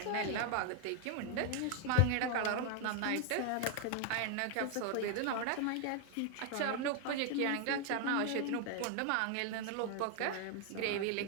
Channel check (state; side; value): different; both; correlation 0.00